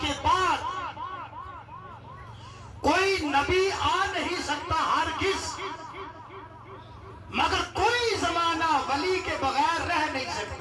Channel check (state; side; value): identical; both; correlation 1.00